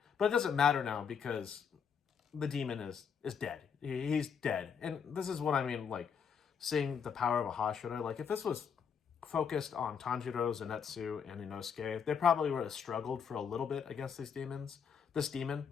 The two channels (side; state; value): right; quieter; 6.9 dB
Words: But it doesn't matter now because the demon is dead. He's dead. And this is what I mean, like, seeing the power of a Hashira. Like, if this was focused on Tanjiro, Zenitsu, and Inosuke, they probably would have struggled for a little bit against these demons. This demon.